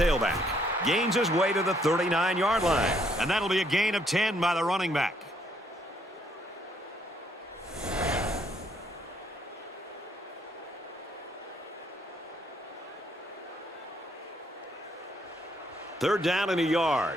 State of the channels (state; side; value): normal; both; correlation 0.70